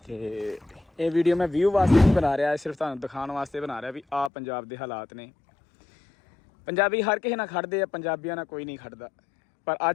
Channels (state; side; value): drops out; right; at 4.3 s